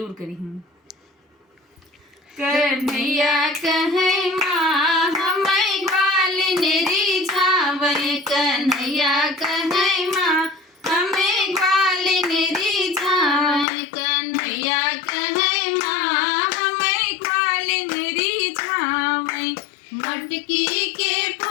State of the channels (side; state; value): right; drops out; at 13.7 s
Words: करी हूँ। कन्हैया कहे माँ हमें ग्वालिन रिझावे, कन्हैया कहे माँ हमें ग्वालिन रिझावे, कन्हैया कहे माँ हमें ग्वालिन रिझावे। मटकी के